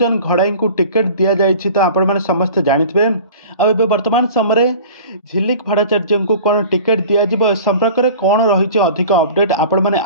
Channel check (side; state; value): both; inverted; correlation -0.41